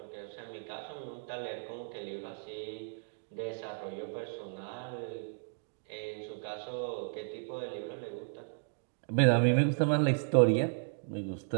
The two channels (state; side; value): silent; left; digital silence